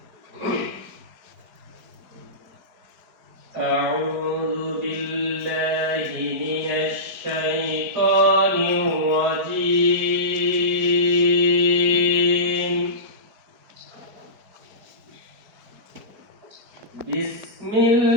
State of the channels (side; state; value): left; late; 4.7 ms